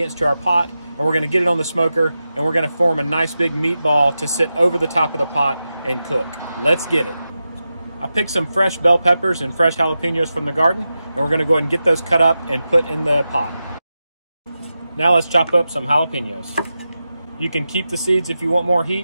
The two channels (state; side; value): inverted; both; correlation -0.91